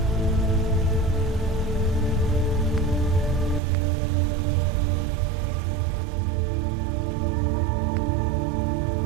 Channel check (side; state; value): left; drops out; at 3.6 s